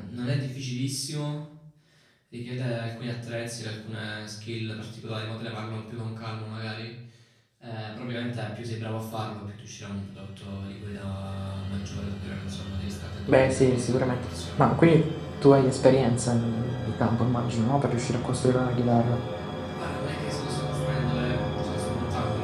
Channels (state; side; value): identical; both; correlation 1.00